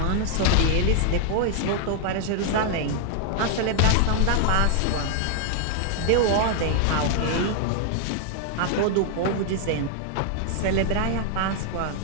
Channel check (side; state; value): both; different; correlation 0.00